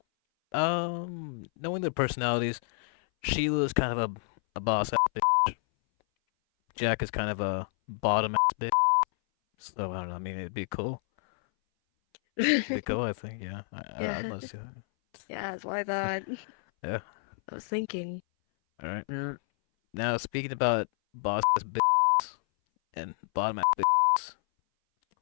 knowing their personalities, Sheila's kind of a boss ass bitch. Jack is kind of a bottom ass bitch. So, I don't know. I mean, it'd be cool. It'd be cool, I think. Yeah. I'd Yeah, love to see that. yeah, that's what I thought. Yeah. I was thinking. All right. Yeah. Now, speaking about boss ass bitches and bottom ass bitches,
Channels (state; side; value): silent; right; 58 dB below the other